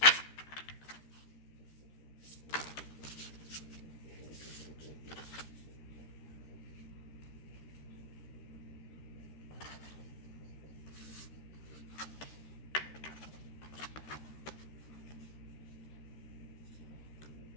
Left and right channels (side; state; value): right; late; 13 ms